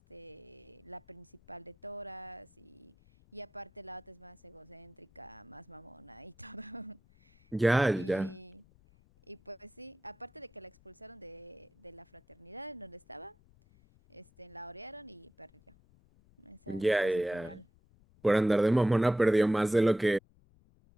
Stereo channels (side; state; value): left; noise; rumble, 29 dB below the sound